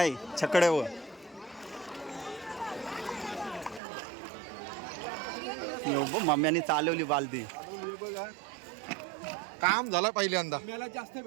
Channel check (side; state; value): left; drops out; at 3.8 s